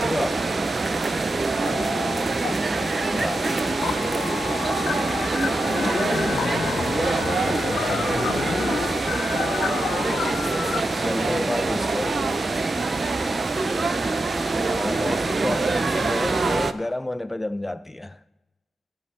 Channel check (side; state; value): both; normal; correlation 0.88